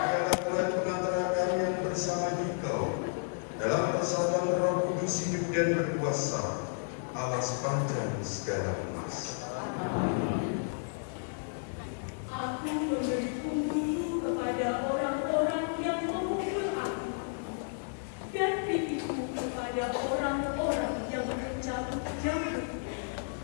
Tuhan pengantara kalian bersama Engkau dalam persatuan Roh Kudus hidup dan berkuasa Allah sepanjang segala emas. Aku memberi punggungku kepada orang-orang yang memukul aku, dan pipiku kepada orang-orang yang mencabut jambut.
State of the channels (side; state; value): right; silent; 56 dB below the other